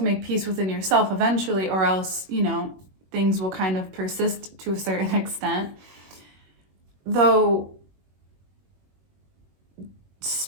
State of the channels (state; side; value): late; left; 21 ms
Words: make peace within yourself eventually, or else, things will kind of persist to a certain extent. Though